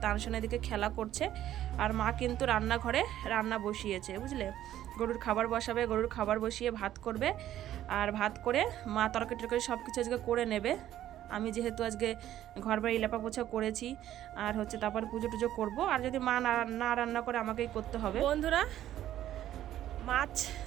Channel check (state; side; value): quieter; left; 12.4 dB